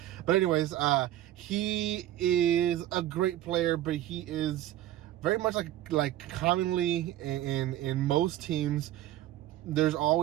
But anyways, he is a great player, but he is very much like commonly in most teams, there's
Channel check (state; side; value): quieter; left; 13.5 dB